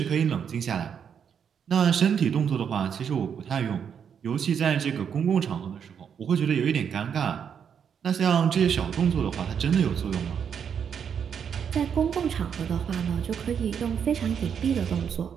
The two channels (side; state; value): left; quieter; 7.6 dB